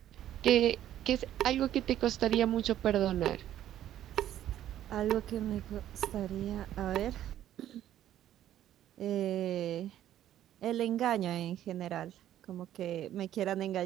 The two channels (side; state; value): left; quieter; 11.9 dB